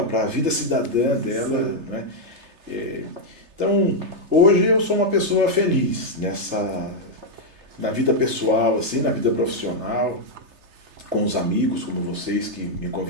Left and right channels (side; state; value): left; late; 3.3 ms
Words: para a vida cidadã dela, né? Então, hoje eu sou uma pessoa feliz na vida pessoal, assim, na vida profissional, com os amigos como vocês que me